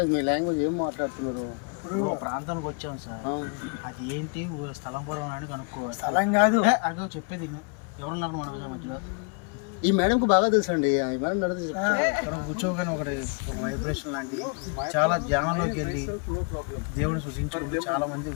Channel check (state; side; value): quieter; right; 36.9 dB